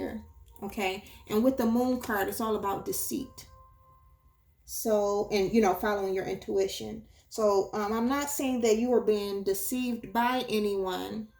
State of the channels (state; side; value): identical; both; correlation 1.00